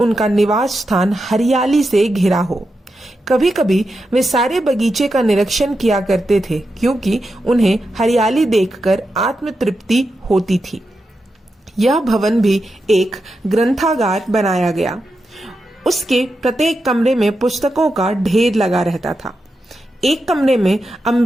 निवास स्थान हरियाली से घिरा हो। कभी कभी वे सारे बगीचे का निरीक्षण किया करते थे क्योंकि उन्हें हरियाली देखकर आत्म तृप्ति होती थी। यह भवन भी एक ग्रंथागार बनाया गया। उसके प्रत्येक कमरे में पुस्तकों का ढेर लगा रहता था। एक कमरे में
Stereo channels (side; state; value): both; normal; correlation 0.88